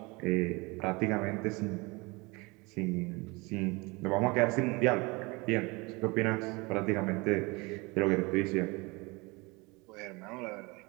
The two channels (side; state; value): left; quieter; 25.9 dB